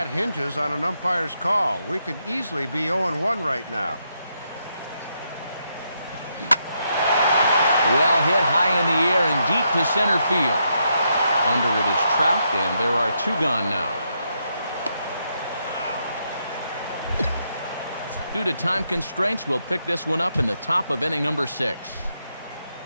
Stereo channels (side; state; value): both; inverted; correlation -0.79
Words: hinges on an umpire's call. We could easily be 0-1 right now. Well hit high in the air and deep to center field. Under it is Trout, and there are 2 gone now. Due to time constraints, we'll pick this one up in the top of inning number 6.